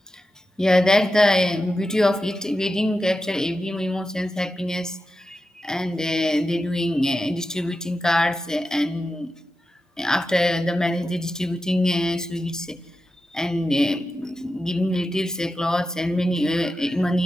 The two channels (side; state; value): both; normal; correlation 0.91